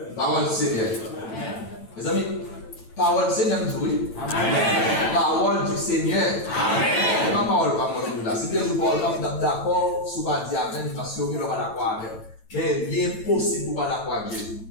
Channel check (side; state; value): right; late; 9.0 ms